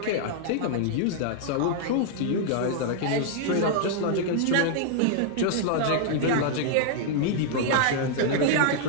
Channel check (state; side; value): different; both; correlation -0.01